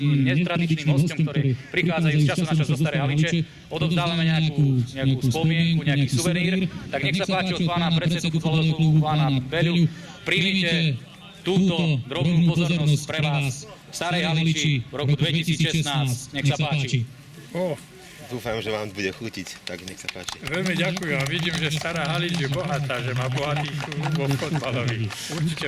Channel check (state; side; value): identical; both; correlation 1.00